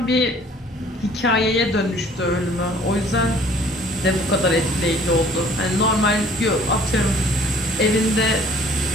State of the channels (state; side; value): normal; both; correlation 0.54